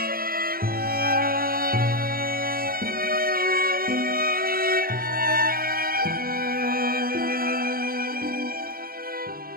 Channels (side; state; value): left; late; 0.43 ms